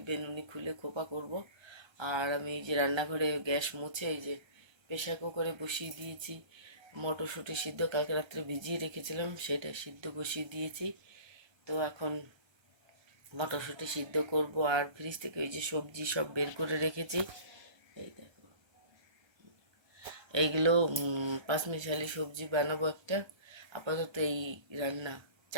বেনুনি খুলে খোপা করব। আর আমি এই যে রান্নাঘরে গ্যাস মুছে এই যে প্রেসার কুকারে বসিয়ে দিয়েছি মটরশুঁটি সিদ্ধ, কালকে রাত্রে ভিজিয়ে রেখেছিলাম, সেটা সিদ্ধ বসিয়ে দিয়েছি। তো এখন মটরশুঁটি সিদ্ধ করব। আর ফ্রিজ থেকে ওই যে সবজি সব বের করে রেখেছি, এই দেখো এইগুলো পাঁচমিশালি সবজি বানাবো একটা। আপাতত এই রান্না,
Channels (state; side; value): late; left; 1.3 ms